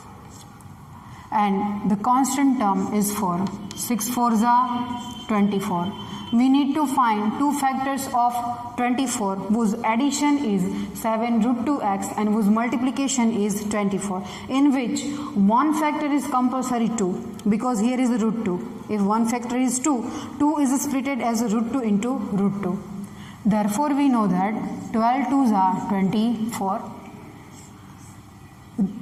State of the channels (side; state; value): both; identical; correlation 1.00